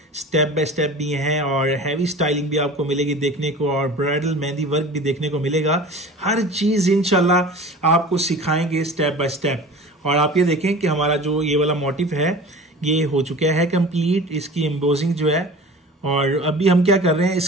स्टेप बाय स्टेप भी हैं और हैवी स्टाइलिंग भी आपको मिलेगी देखने को, और ब्राइडल मेहंदी वर्क भी देखने को मिलेगा। हर चीज़ इंशाल्लाह आपको सिखाएंगे स्टेप बाय स्टेप। और आप ये देखें कि हमारा जो ये वाला मोटिव है ये हो चुका है कंप्लीट, इसकी एम्बोजिंग जो है। और अभी हम क्या कर रहे हैं,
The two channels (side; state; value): both; normal; correlation 0.39